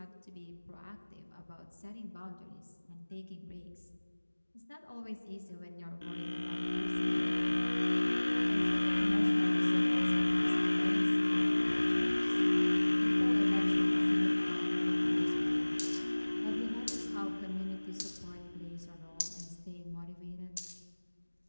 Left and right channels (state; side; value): inverted; both; correlation -1.00